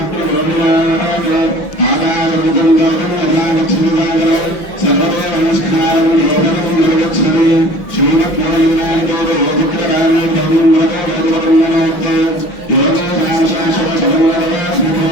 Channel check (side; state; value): right; late; 5.9 ms